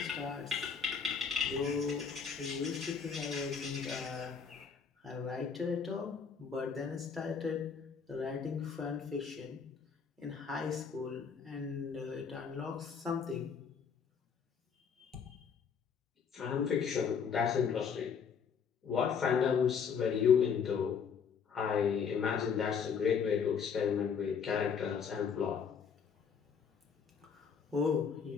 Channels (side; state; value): right; quieter; 6.5 dB